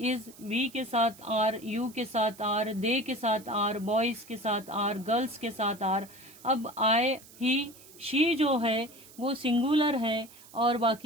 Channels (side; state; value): right; noise; hiss, 21 dB below the sound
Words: वी के साथ आर, यू के साथ आर, दे के साथ आर, बॉयज के साथ आर, गर्ल्स के साथ आर। अब आई, ही, शी जो है वो सिंगुलर है और